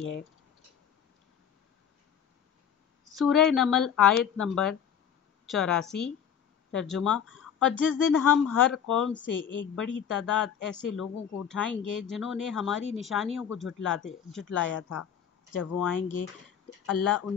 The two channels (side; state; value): right; quieter; 8.3 dB